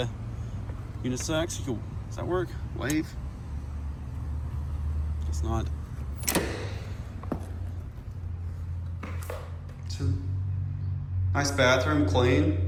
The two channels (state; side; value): identical; both; correlation 1.00